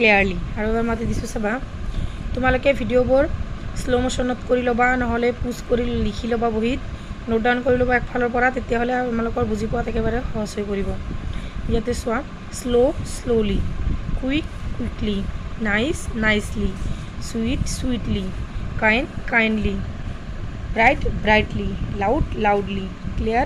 আৰু এবাৰ মাতি দিছোঁ চাবা, তোমালোকে ভিডিঅ'বোৰ শ্ল' মোশ্যনত কৰি ল'বা, নহ'লে পোষ্ট কৰি লিখি ল'বা বহীত, নোট ডাউন কৰি ল'বা একফালৰ পৰা, তেতিয়াহ'লে তোমালোকৰ বুজি পোৱাত একেবাৰে সহজ হৈ পৰিব। ইয়াতে চোৱা, slowly, quickly, nicely, sweetly, kindly, brightly, loudly,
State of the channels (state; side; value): identical; both; correlation 1.00